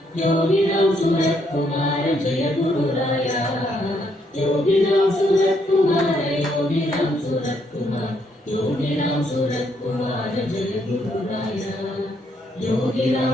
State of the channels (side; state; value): both; normal; correlation 0.73